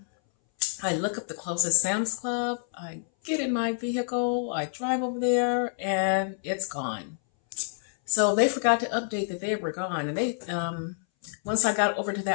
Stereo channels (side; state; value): right; silent; 59 dB below the other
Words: I look up the closest Sam's Club, I get in my vehicle, I drive over there, and it's gone. So they forgot to update that they were gone. And they, once I got over to